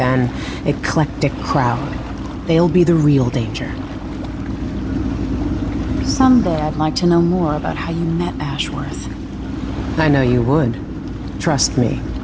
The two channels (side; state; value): both; identical; correlation 1.00